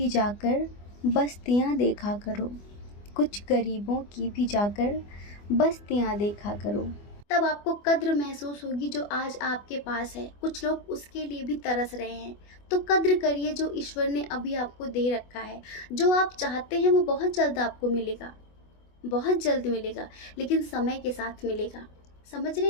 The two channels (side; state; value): right; late; 24 ms